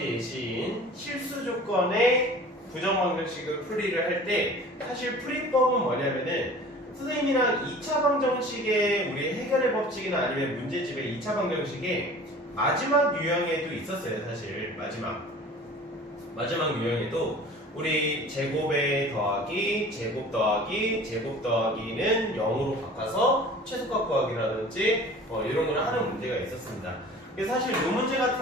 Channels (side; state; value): both; normal; correlation 0.43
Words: 실수 조건의 부정방정식을 풀이를 할 때 사실 풀이법은 뭐냐면은 선생님이랑 2차 방정식의 우리 해결의 법칙이나 아니면 문제집의 2차 방정식에 마지막 유형에도 있었어요. 사실 마지막 유형에도 우리 제곱에 더하기, 제곱 더하기, 제곱 더하기는 0으로 바꿔서 최소값 구하기라든지 이런 걸 하는 문제가 있었습니다. 사실 이 문제